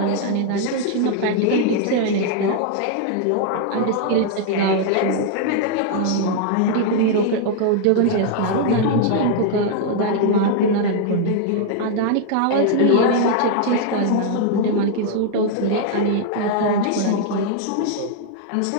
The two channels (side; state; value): both; different; correlation 0.00